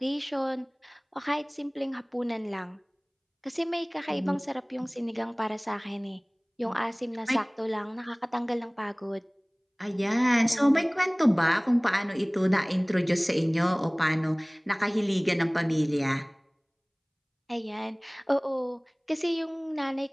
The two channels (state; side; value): identical; both; correlation 1.00